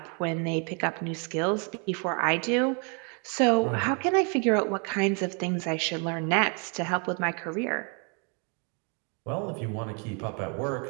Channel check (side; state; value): left; quieter; 37.0 dB